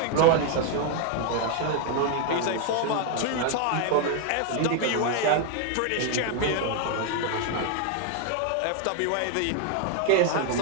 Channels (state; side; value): different; both; correlation 0.01